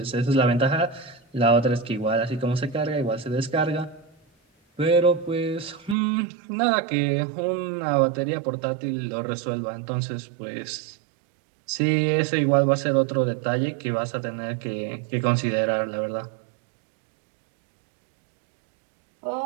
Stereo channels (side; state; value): left; drops out; at 6.0 s